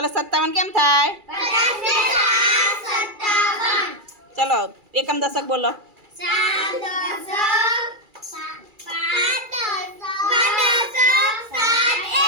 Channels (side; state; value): left; late; 2.4 ms